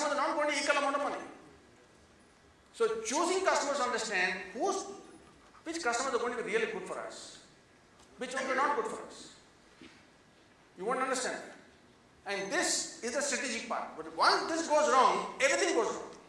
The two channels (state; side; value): identical; both; correlation 1.00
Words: are not going to equal amount of money. So choosing customers understand which customers are going to be really good for us, which ones are not good for us. You won't understand that. And this is the strategic part. But once this goes wrong, everything goes wrong.